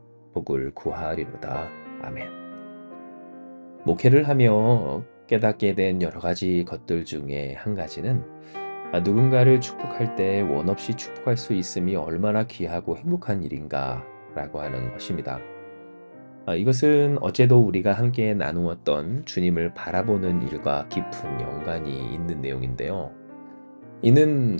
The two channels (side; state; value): both; inverted; correlation -1.00